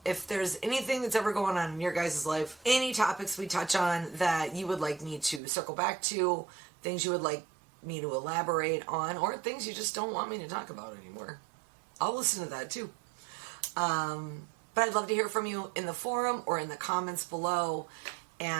if there's anything that's ever going on in your guys' life, any topics we touch on that you would like me to circle back to, things you would like me to elaborate on, or things you just don't want me to talk about anymore, I'll listen to that too. But I'd love to hear from you in the forum or in the comments below.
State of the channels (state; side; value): drops out; left; at 5.4 s